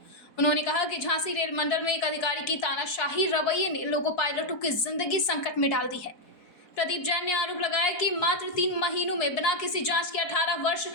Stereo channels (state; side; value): late; right; 4.6 ms